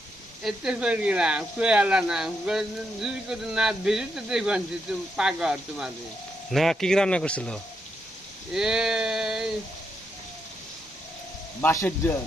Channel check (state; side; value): normal; both; correlation 0.80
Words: এতে করে না কই আলা না যদি করে না বেরিতে দেখবেন যে তুমি পাগল তোমাদের না, কি কি রান্না করছিল? এই বাসের জল